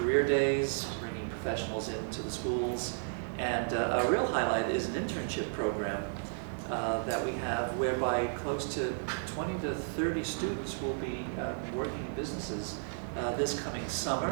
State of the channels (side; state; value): left; silent; digital silence